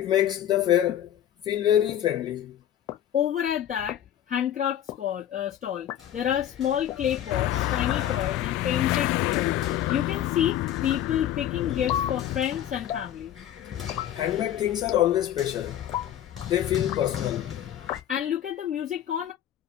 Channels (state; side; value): quieter; right; 11.2 dB